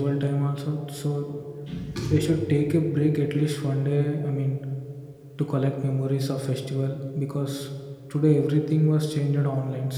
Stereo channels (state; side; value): identical; both; correlation 1.00